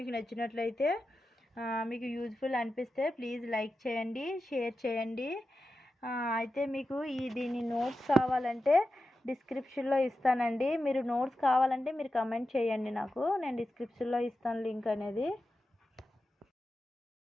నచ్చినట్లయితే, మీకు యూజ్ఫుల్ అనిపిస్తే ప్లీజ్ లైక్ చేయండి, షేర్ చేయండి. అయితే మీకు దీని నోట్స్ కావాలంటే డిస్క్రిప్షన్లో ఇస్తానండి. మీరు నోట్స్ కావాలంటే మీరు కమెంట్ చేయండి నాకు, నేను డిస్క్రిప్షన్లో ఇస్తాను లింక్ అనేది.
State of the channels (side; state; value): both; normal; correlation 0.91